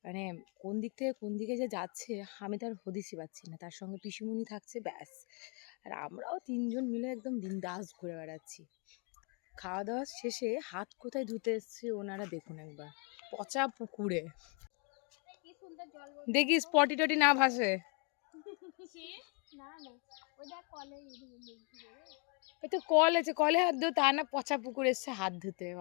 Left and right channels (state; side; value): quieter; right; 33.8 dB